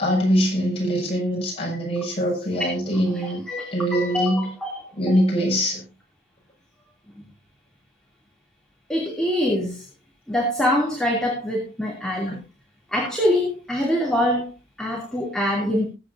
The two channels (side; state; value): both; normal; correlation 0.66